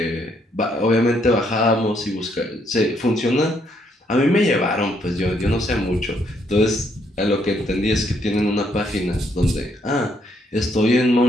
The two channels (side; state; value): both; normal; correlation 0.72